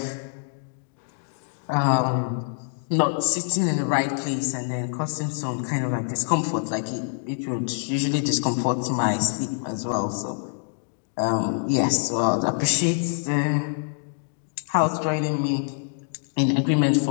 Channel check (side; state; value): right; silent; digital silence